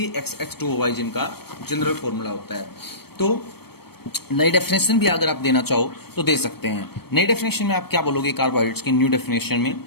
जिनका जनरल फॉर्मूला होता है। तो नई डेफिनेशन भी अगर आप देना चाहो तो दे सकते हैं। नई डेफिनेशन में आप क्या बोलोगे कार्बोहाइड्रेट्स की न्यू डेफिनेशन में,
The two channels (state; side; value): late; right; 0.96 ms